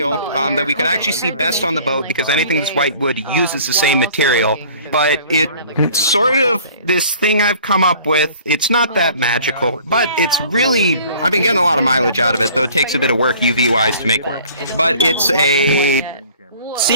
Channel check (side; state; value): both; inverted; correlation -0.50